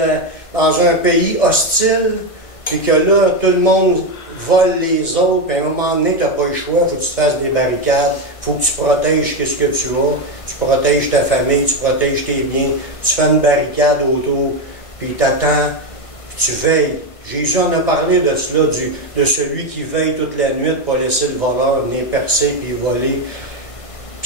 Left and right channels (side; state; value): right; late; 1.5 ms